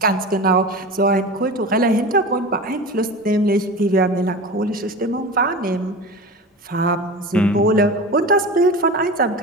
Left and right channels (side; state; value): both; normal; correlation 0.30